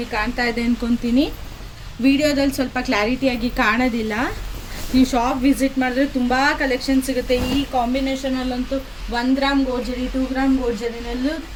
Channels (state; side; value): identical; both; correlation 1.00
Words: ಕಾಣ್ತಾ ಇದೆ ಅಂದ್ಕೊತೀನಿ. ವಿಡಿಯೋದಲ್ಲಿ ಸ್ವಲ್ಪ ಕ್ಲಾರಿಟಿಯಾಗಿ ಕಾಣೋದಿಲ್ಲ. ನೀವು ಶಾಪ್ ವಿಸಿಟ್ ಮಾಡಿದ್ರೆ ತುಂಬ ಕಲೆಕ್ಷನ್ ಸಿಗುತ್ತೆ. ಈ ಕಾಂಬಿನೇಷನಲ್ಲಂತೂ 1 ಗ್ರಾಮ್ ಗೋಲ್ಡ್, 2 ಗ್ರಾಮ್ ಗೋಲ್ಡ್